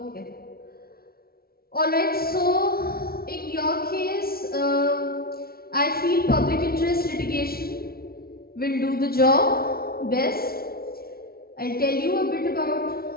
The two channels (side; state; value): right; late; 0.44 ms